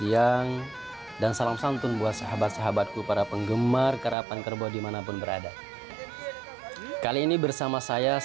dan salam santun buat sahabat-sahabatku para penggemar karapan kerbau dimanapun berada. Kali ini bersama saya,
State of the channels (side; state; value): left; drops out; at 4.2 s